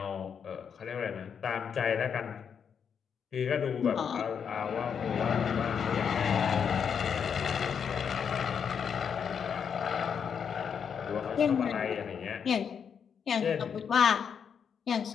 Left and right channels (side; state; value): right; quieter; 7.1 dB